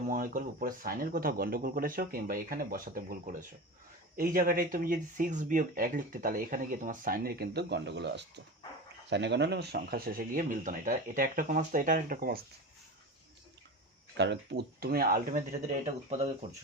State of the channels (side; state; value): both; normal; correlation 0.28